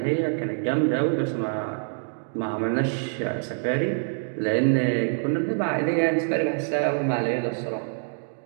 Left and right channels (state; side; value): silent; left; digital silence